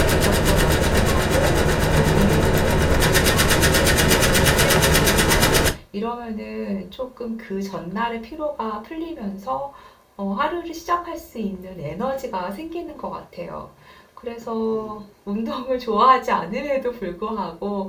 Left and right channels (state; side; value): identical; both; correlation 1.00